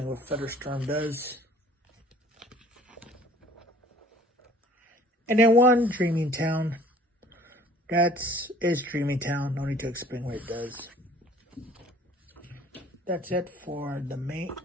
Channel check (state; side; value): normal; both; correlation 0.53